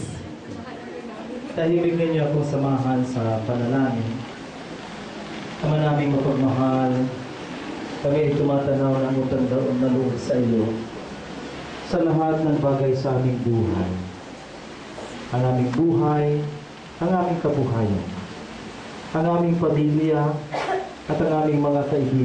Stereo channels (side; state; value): both; identical; correlation 1.00